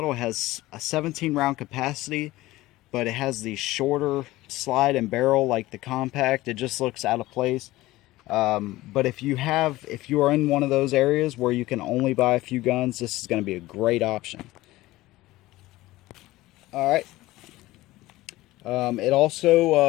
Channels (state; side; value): quieter; right; 17.8 dB